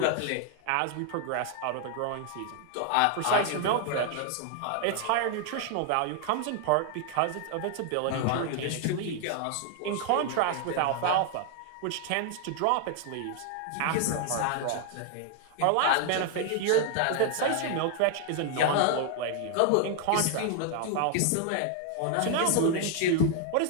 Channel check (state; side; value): different; both; correlation 0.00